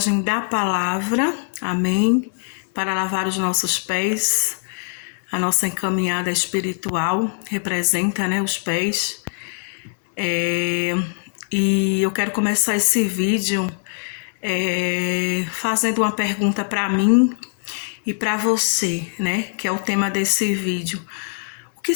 da palavra, amém? Para lavar os nossos pés, a nossa encaminhada espiritual representa, os pés. E eu quero começar esse vídeo fazendo uma pergunta para mim e para você, que é o tema desse vídeo. O que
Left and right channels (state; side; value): silent; right; 64 dB below the other